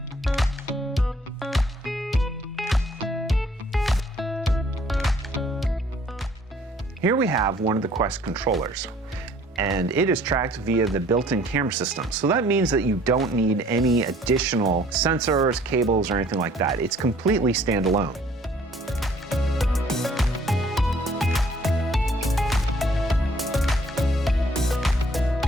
Here we have one of the Quest controllers, and it is tracked via the built-in camera system. So that means that you don't need any additional sensors, cables, or anything like that. It's completely standalone.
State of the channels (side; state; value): both; normal; correlation 0.58